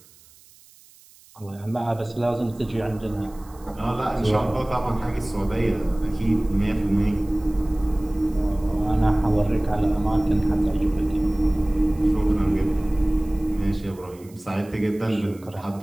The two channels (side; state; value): right; noise; hiss, 26 dB below the sound